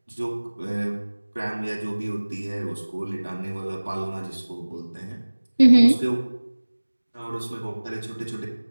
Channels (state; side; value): inverted; both; correlation -1.00